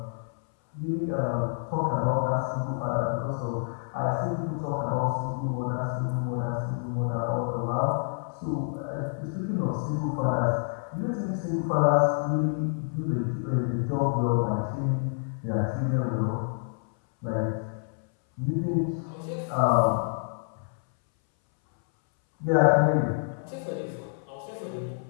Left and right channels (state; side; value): silent; right; 59 dB below the other